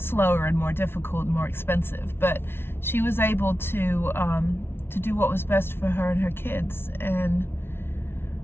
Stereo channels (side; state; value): right; late; 0.11 ms